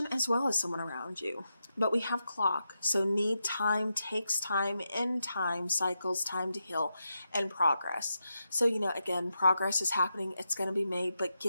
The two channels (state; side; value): inverted; both; correlation -0.86